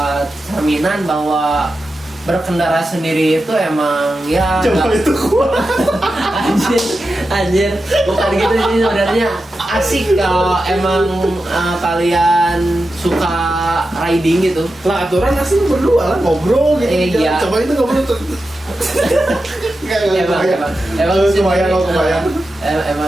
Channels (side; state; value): both; normal; correlation 0.91